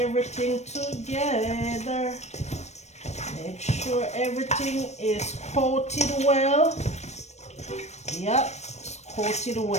together. Make sure everything is coated well. Yep, it's coated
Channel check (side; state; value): right; late; 0.32 ms